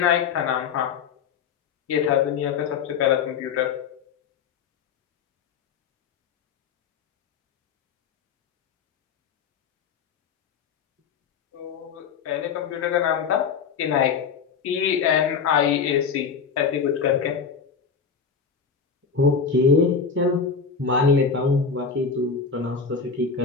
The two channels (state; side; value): quieter; right; 5.9 dB